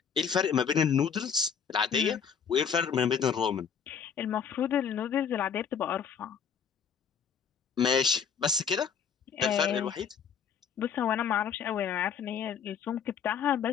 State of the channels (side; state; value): right; quieter; 7.1 dB